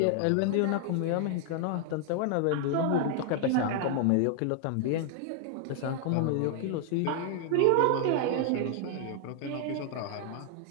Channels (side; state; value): both; different; correlation -0.01